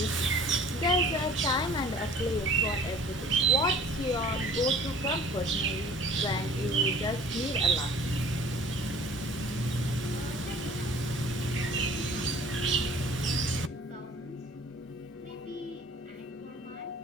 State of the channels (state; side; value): normal; both; correlation 0.48